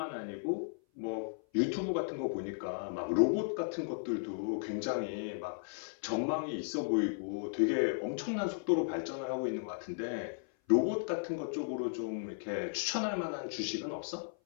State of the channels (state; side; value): silent; right; 54 dB below the other